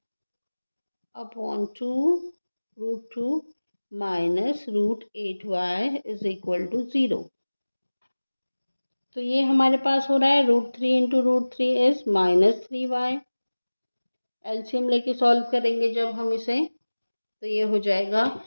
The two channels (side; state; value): both; inverted; correlation -1.00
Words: upon 2 root 2 minus root 8y is equal to 0। तो ये हमारे पास हो रहा है root 3 into root 3 is minus 3y। LCM लेके सॉल्व करेंगे जब हम इसे, तो ये हो जाएगा,